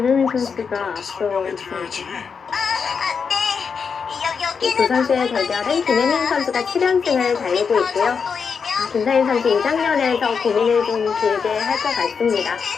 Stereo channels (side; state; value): right; quieter; 5.9 dB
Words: 선수가 앞서 있습니다. 이 두 선수의 대결은 김혜민 선수가 7연승을 달리고 있고요. 김상인 선수 2장면에서 고민을 좀 길게 할 것 같습니다.